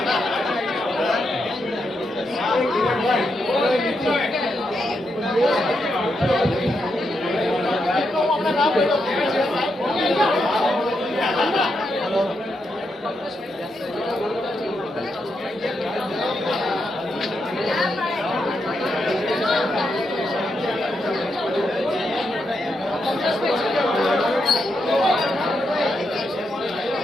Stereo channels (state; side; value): normal; both; correlation 0.83